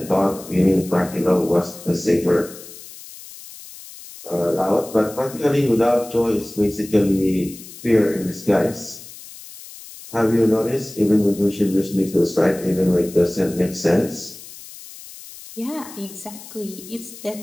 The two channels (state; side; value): noise; left; hiss, 16 dB below the sound